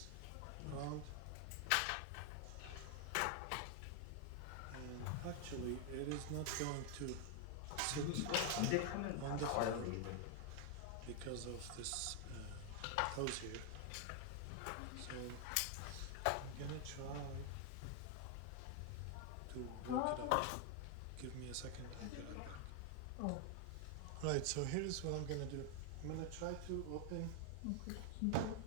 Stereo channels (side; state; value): both; different; correlation 0.00